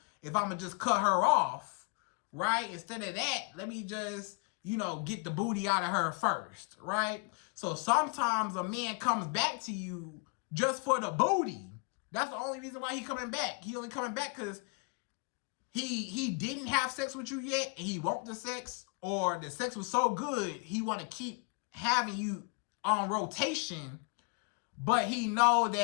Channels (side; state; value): right; quieter; 33.2 dB